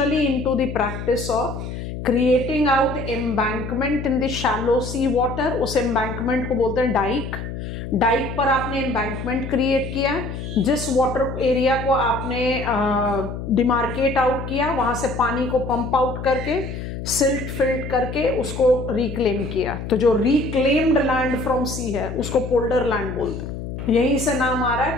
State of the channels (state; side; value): noise; left; hum, 7 dB below the sound